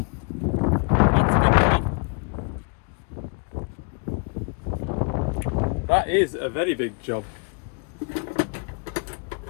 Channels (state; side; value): quieter; right; 35.7 dB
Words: job. That is a very big job.